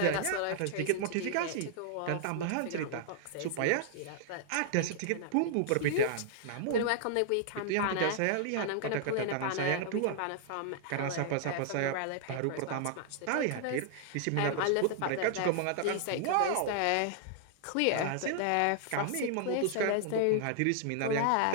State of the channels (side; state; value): both; different; correlation -0.01